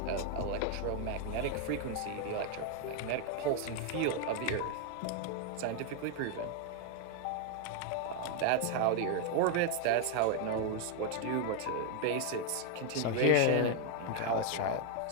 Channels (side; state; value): both; different; correlation 0.00